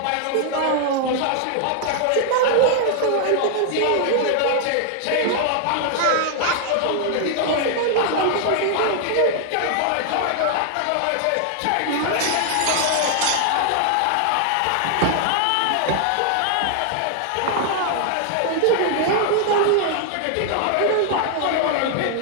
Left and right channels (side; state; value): both; different; correlation 0.00